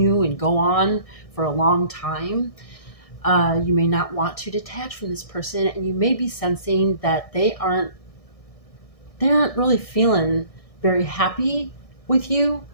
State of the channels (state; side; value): late; right; 1.6 ms